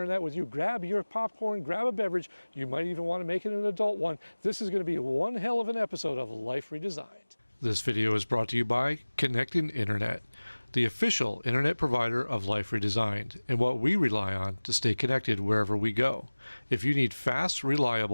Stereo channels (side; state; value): both; inverted; correlation -1.00